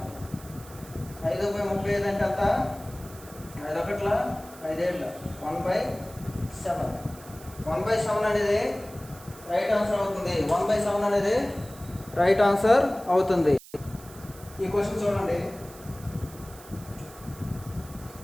5/35 అంటే అంత 5 ఒకట్ల 5 ఏళ్ళ 1/7. 1/7 అనేది రైట్ ఆన్సర్ అవుతుంది. 1/7 అనేది రైట్ ఆన్సర్ అవుతుంది. ఈ క్వశ్చన్ చూడండి,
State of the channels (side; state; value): right; noise; hiss, 19 dB below the sound